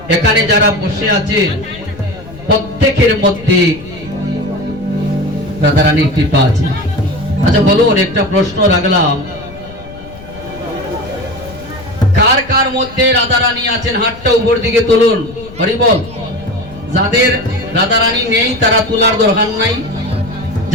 এখানে যারা বসে আছে প্রত্যেকের মধ্যে রাধা রানীর কৃপা আছে। আচ্ছা বলুন, একটা প্রশ্ন রাখলাম, কার কার মধ্যে রাধা রানী আছেন হাতটা উপর দিকে তুলুন। হরি বল। যাদের রাধা রানী নেই তারা তোলার দরকার নাই,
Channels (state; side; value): noise; left; rumble, 17 dB below the sound